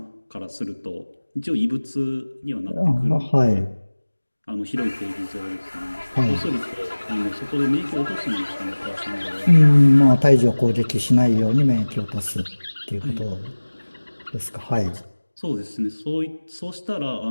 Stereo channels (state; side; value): inverted; both; correlation -1.00